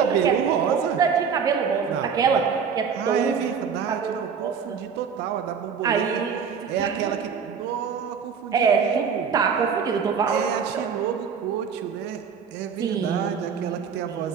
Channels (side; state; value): left; quieter; 6.6 dB